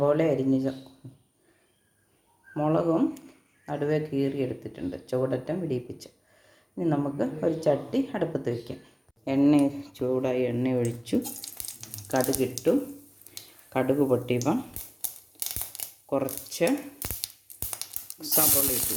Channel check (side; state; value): both; identical; correlation 1.00